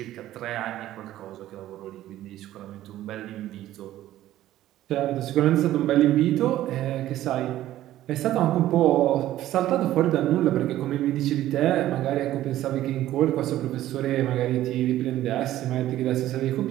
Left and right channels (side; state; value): left; quieter; 13.9 dB